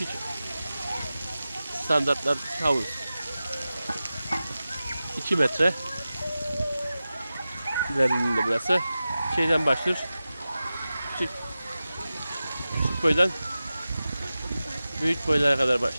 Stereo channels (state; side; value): inverted; both; correlation -0.94